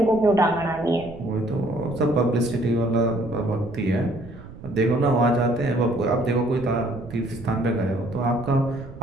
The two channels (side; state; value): right; noise; rumble, 16 dB below the sound